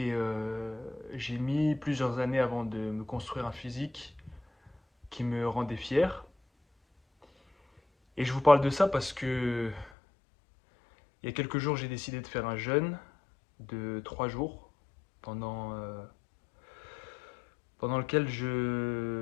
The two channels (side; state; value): right; drops out; at 9.9 s